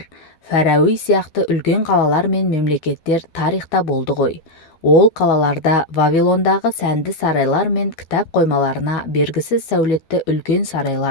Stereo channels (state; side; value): late; right; 12 ms